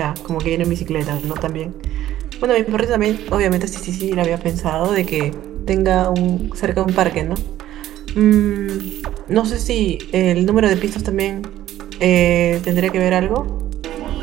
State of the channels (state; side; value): quieter; left; 13.2 dB